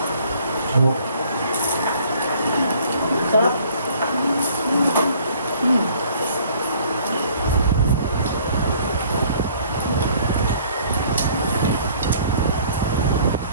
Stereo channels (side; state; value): both; inverted; correlation -0.56